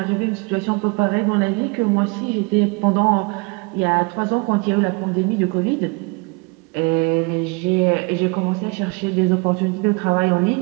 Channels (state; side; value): quieter; left; 30.0 dB